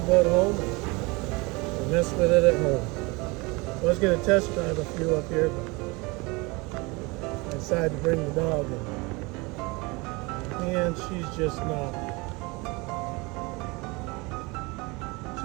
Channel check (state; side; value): quieter; left; 25.8 dB